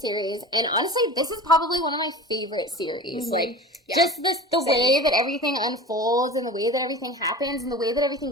and honestly, this is probably one of my favorite series. Like, just the way that everything unfolds, and the way that everything happens, and the way that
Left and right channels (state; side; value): normal; both; correlation 0.34